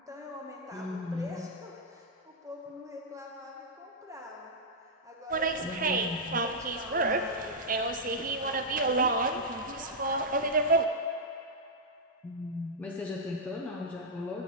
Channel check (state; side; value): normal; both; correlation -0.07